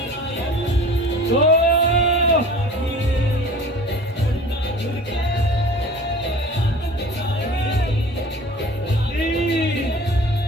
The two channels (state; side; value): normal; both; correlation 0.43